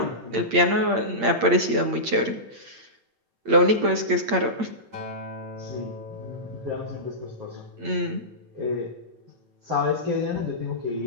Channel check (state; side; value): late; left; 8.7 ms